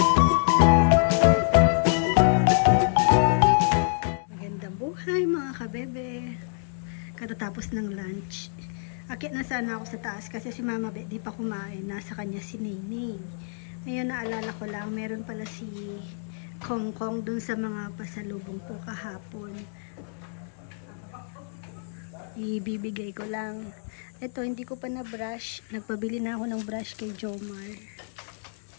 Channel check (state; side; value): silent; right; digital silence